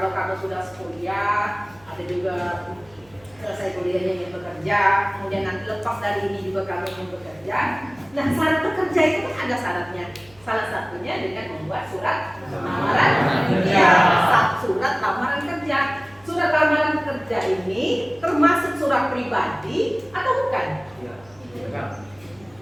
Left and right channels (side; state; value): right; noise; hum, 28 dB below the sound